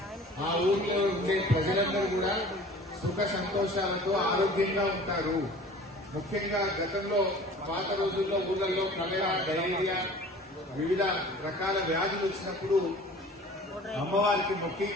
ఆ ఊర్లో ఉండే ప్రజలందరూ కూడా సుఖ సంతోషాలతో ఆరోగ్యంగా ఉంటారు. ముఖ్యంగా గతంలో పాత రోజుల్లో ఊళ్ళల్లో కలరా, డయేరియా, వివిధ రకాల వ్యాధులు వచ్చినప్పుడు అమ్మవారికి మొక్కి,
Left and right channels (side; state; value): both; normal; correlation 0.45